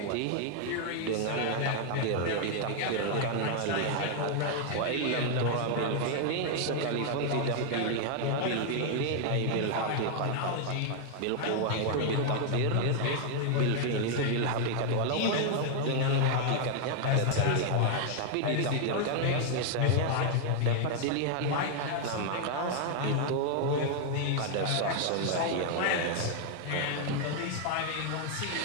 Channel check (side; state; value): both; different; correlation 0.00